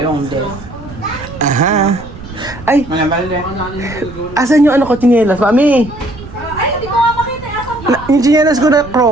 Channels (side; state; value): right; noise; rumble, 15 dB below the sound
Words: Aha. Ay, Mana balik. asan yung ano ko, chinelas? Mami, Ay, hindi ko nga makita. Asan ba? yung chinelas ko na